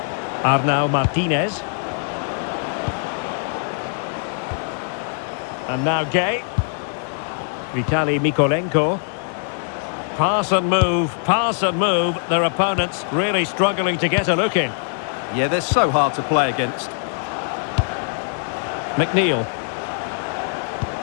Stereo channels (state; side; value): silent; right; 62 dB below the other